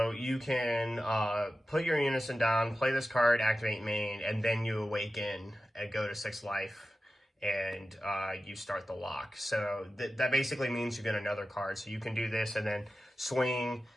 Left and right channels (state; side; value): normal; both; correlation 0.94